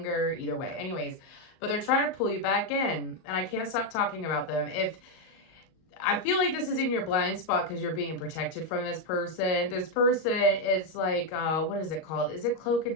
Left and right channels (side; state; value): right; late; 38 ms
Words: either way. Anyways, but they're trying to pull you back in, and I can't stop talking about them. I feel like this is in your blind spot because you're being protected from this person. This person is like, what is it called? Is it Cloak